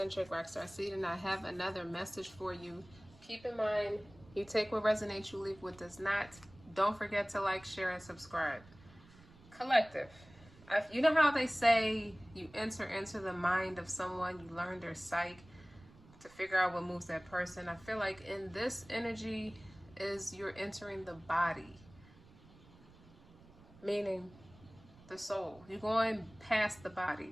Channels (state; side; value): noise; right; rumble, 23 dB below the sound